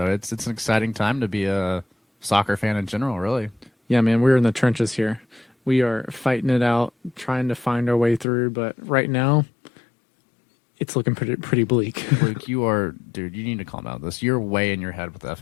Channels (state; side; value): drops out; right; at 8.2 s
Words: it's an exciting time to be a soccer fan in general, really. Yeah, man, we're in the trenches here. We are fighting it out, trying to find our way through, but right now, it's looking pretty bleak. Luke, dude, you need to calm down this. You're way in your head with